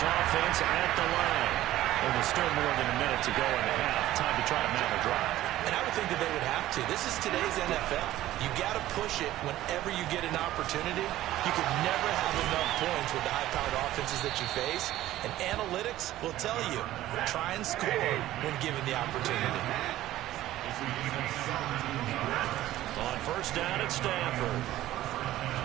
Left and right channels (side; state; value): left; quieter; 14.6 dB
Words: offense at the line. And there's still more than a minute to go in the half. Time to try to mount a drive. And I would think that they would have to. This is today's NFL. You got to push it whenever you get an opportunity. You can never have enough points with the high-powered offenses that you face. And analytics will tell you, try and score when given the opportunity. On 1st down at Stafford.